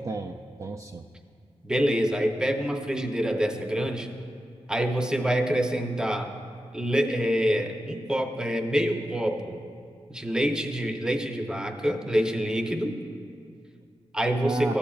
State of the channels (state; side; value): normal; both; correlation 0.90